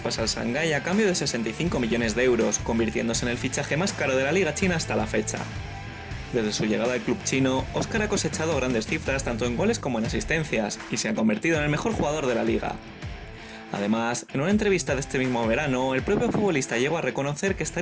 al Shanghái a cambio de 65 millones de euros, convirtiéndose en el fichaje más caro de la liga china hasta la fecha. Desde su llegada al club chino, Óscar ha cosechado grandes cifras tanto en goles como en asistencias, y se ha convertido en el mejor jugador de la liga. Además, en una entrevista de este mismo verano, el propio futbolista llegó a reconocer que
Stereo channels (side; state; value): both; identical; correlation 1.00